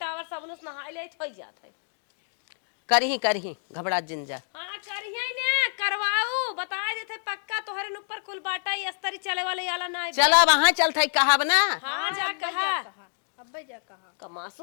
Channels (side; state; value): right; silent; digital silence